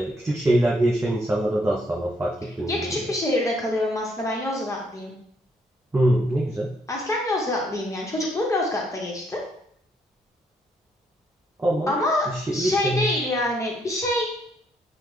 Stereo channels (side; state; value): both; normal; correlation 0.71